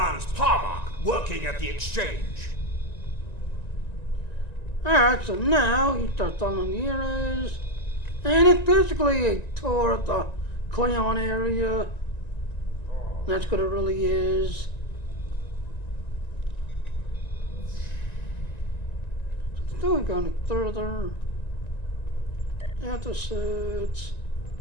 Parmach, working at the exchange. Alright, so now you start following the heroes. And it's basically a tour of the Klingon area. That's what it really is. So still going further. Episodes.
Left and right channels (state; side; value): late; right; 1.9 ms